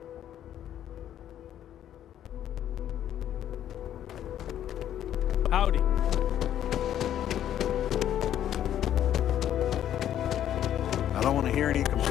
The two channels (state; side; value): quieter; right; 10.9 dB